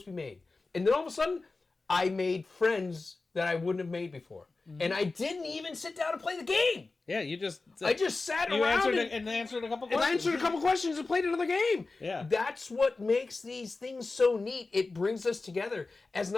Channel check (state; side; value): quieter; right; 3.7 dB